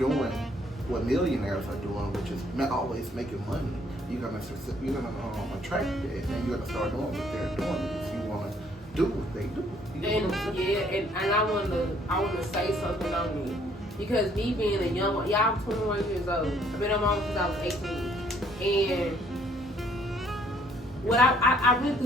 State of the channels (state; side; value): normal; both; correlation 0.64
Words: what millionaires are doing, which is always making money, you're gonna attract that, and you're gonna start doing what they're doing if you want to do what they do. And I want to say something on me, because me being a young, I'm 21 years old. I've been on my own since I was 18, and what I went